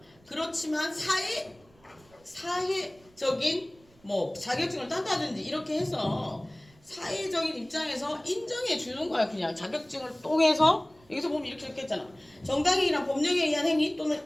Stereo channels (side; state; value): right; noise; rumble, 29 dB below the sound